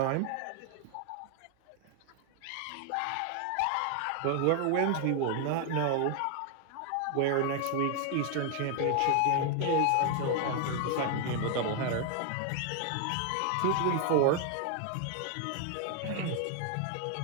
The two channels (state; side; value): different; both; correlation 0.00